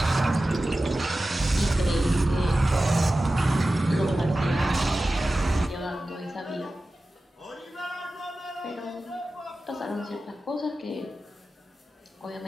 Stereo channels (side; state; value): both; normal; correlation 0.95